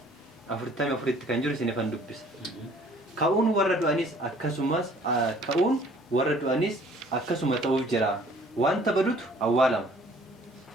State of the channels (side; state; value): both; normal; correlation 0.56